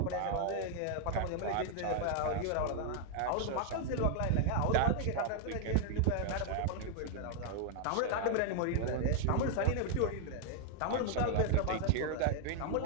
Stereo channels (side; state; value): both; different; correlation 0.00